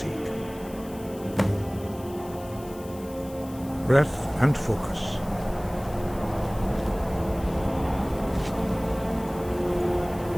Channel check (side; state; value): left; noise; hiss, 20 dB below the sound